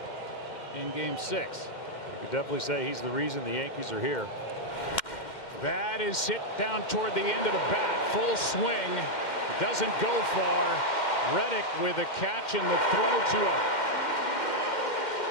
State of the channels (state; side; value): late; right; 2.1 ms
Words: in game 6. You could definitely say he's the reason the Yankees are here. That is hit down toward the end of the bat. Full swing. Doesn't go far. Reddick with a catch and the throw to out.